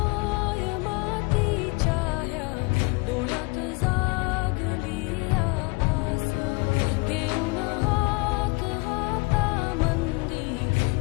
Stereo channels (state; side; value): quieter; right; 28.1 dB